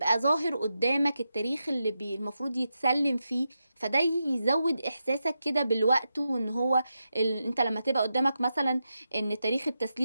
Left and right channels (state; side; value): inverted; both; correlation -0.87